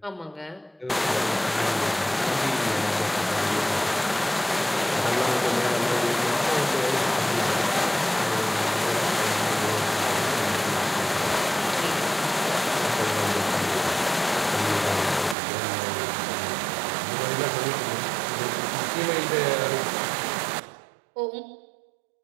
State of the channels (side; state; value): left; drops out; at 15.4 s